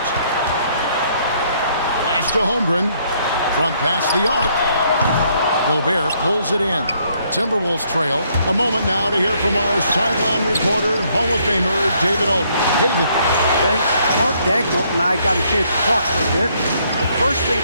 Pass to Holmgren. From past the arc. Gobert pulls it in. Timberwolves trail. A moment now to hear from our sideline reporter, Hall of Famer David Aldridge. David. Thanks. Mark Dagnall and I got a chance to talk for a bit. The first thing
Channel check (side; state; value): both; inverted; correlation -0.68